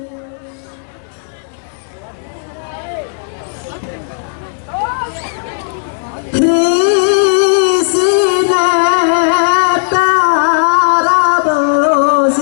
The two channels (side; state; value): right; silent; digital silence